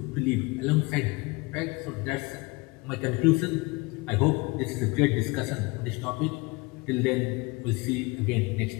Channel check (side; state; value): right; quieter; 25.5 dB